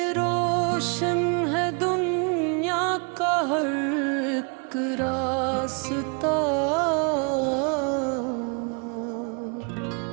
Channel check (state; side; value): quieter; left; 36.6 dB